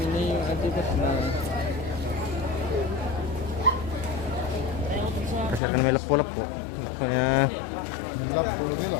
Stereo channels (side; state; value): right; drops out; at 5.6 s